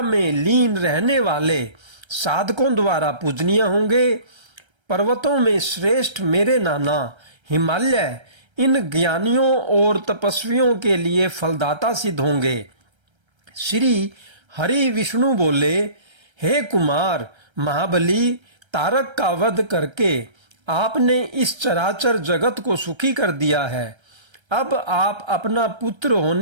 लीन रहने वाले साधकों द्वारा पूजनीय होंगे। पर्वतों में श्रेष्ठ मेरे नाना हिमालय इन ज्ञानियों और तपस्वियों के लिए फलदाता सिद्ध होंगे। श्री हरि विष्णु बोले, हे कुमार महाबली, तारक का वध करके आपने इस चराचर जगत को सुखी कर दिया है। अब आप अपना पुत्र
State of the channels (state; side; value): late; left; 1.3 ms